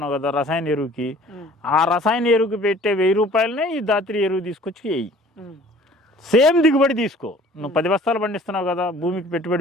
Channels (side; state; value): both; normal; correlation 0.51